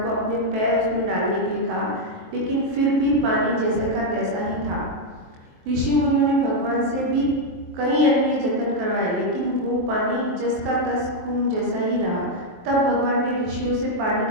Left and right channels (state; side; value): late; left; 23 ms